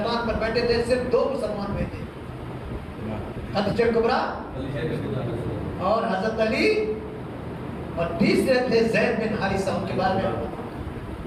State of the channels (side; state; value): both; identical; correlation 1.00